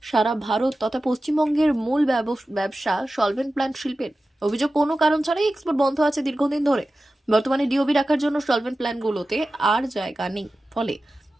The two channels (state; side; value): normal; both; correlation 0.94